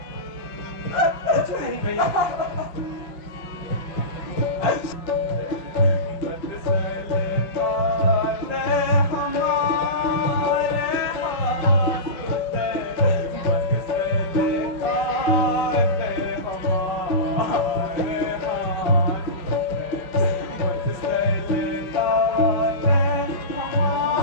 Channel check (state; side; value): late; right; 5.6 ms